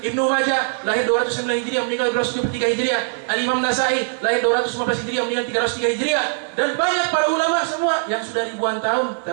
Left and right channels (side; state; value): left; silent; 60 dB below the other